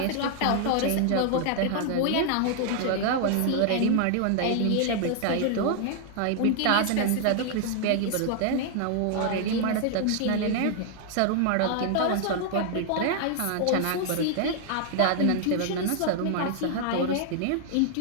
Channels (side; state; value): both; different; correlation 0.00